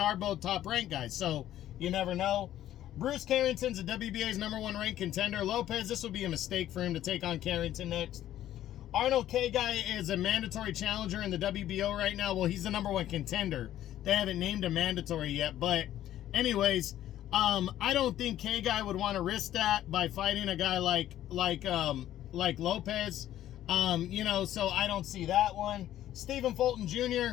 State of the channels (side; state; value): right; quieter; 12.6 dB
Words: both top-ranked guys. So you never know. Bruce Carrington's the WBA's #1 ranked contender. Lopez, this would be a mistake for him to take on Carrington next. Arnold K. Guy is a mandatory challenger in the WBO right now. Well, he's the #1 contender. They haven't named him mandatory yet. But anyways, I don't think K. Guy would want to risk that by fighting a guy like Lopez. You know, so I don't see that one. Stephen Fulton